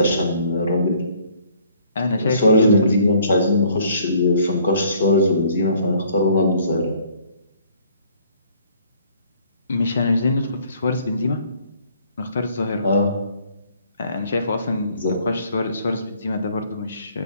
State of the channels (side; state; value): both; inverted; correlation -0.60